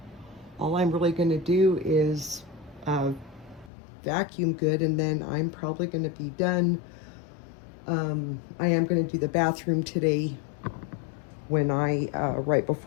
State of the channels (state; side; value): drops out; right; at 3.7 s